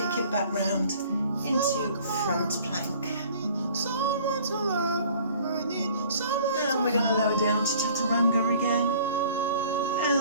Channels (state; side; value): inverted; both; correlation -0.52